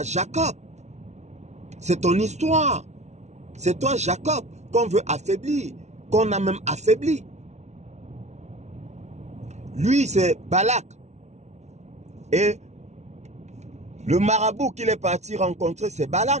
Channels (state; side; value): late; left; 0.32 ms